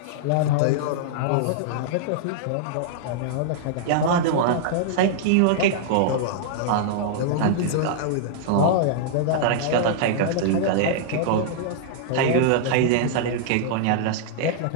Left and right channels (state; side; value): different; both; correlation -0.01